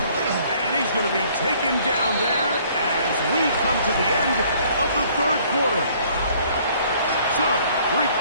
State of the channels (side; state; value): both; inverted; correlation -0.59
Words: he's going to be taken down there as we come to the end of the third quarter. So, 3